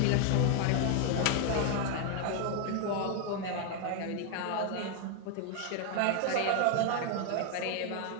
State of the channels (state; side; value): different; both; correlation 0.00